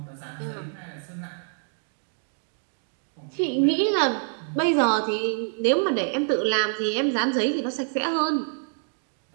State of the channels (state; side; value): silent; left; digital silence